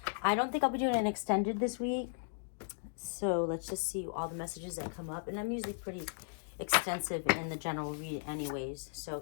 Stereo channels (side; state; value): right; silent; digital silence